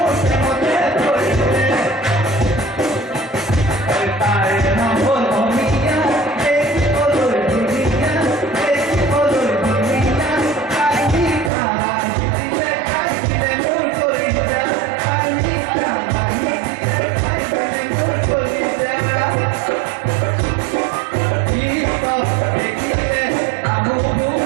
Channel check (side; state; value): left; drops out; at 11.5 s